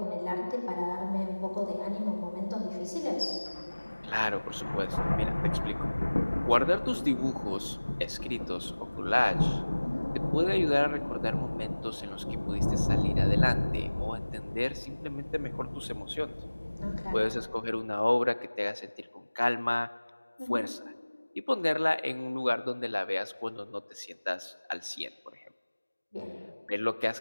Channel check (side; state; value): both; inverted; correlation -1.00